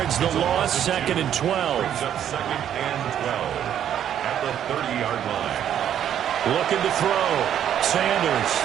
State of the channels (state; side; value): quieter; left; 10.0 dB